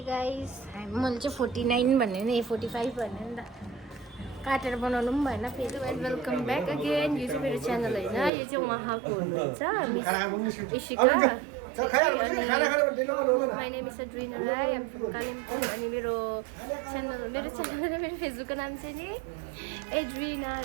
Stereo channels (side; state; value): left; drops out; at 8.3 s